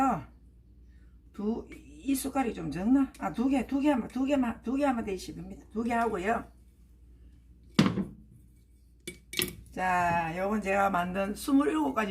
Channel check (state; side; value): identical; both; correlation 1.00